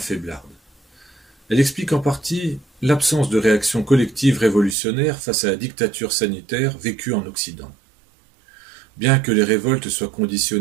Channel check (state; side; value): drops out; left; at 4.8 s